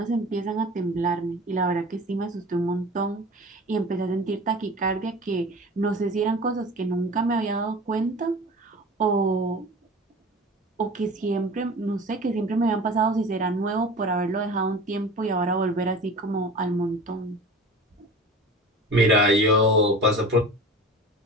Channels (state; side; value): normal; both; correlation 0.37